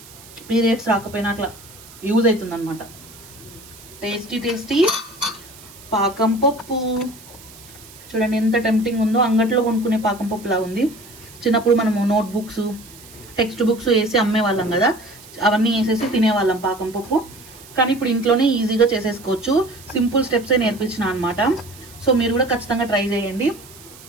పీరియడ్స్ రాకపోయినా అట్లా యూజ్ అవుతుంది అనమాట. టేస్టీ టేస్టీ పాకం పప్పు చూడండి ఎంత టెంప్టింగ్ ఉందో. అంగట్లో కొనుక్కునే పాకం పప్పు లాగా ఉంది. చిన్నప్పుడు మనము నోట్ బుక్స్ టెక్స్ట్ బుక్స్ వేసి అమ్మేవాళ్ళం కదా, అవన్నీ వేసేసి తినేవాళ్ళం పాకం పప్పు. కానీ ఇప్పుడు ఇంట్లోనే ఈజీగా చేసేసుకోవచ్చు. సింపుల్ స్టెప్సే నేర్పించిన అనమాట. సో మీరు కూడా ఖచ్చితంగా ట్రై చేయండి.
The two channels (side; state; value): right; noise; hiss, 20 dB below the sound